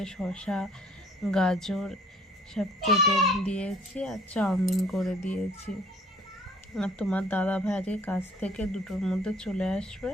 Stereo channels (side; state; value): both; normal; correlation 0.56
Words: শসা গাজর সব কেটে দিয়েছি আর চাউমিন করে দিয়েছি। আর তোমার দাদা ভাই আজকে কাজ থেকে 2টোর মধ্যে চলে আসবে,